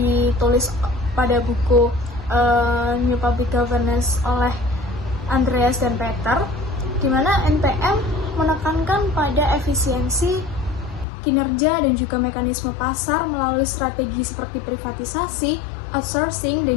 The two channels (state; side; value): drops out; right; at 11.1 s